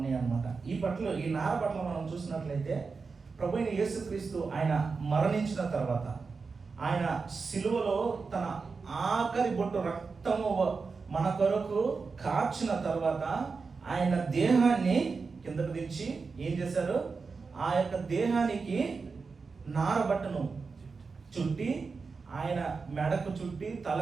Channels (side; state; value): left; quieter; 4.7 dB